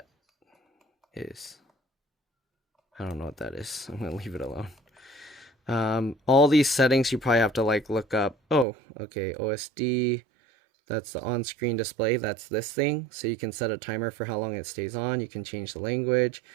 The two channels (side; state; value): left; drops out; at 8.7 s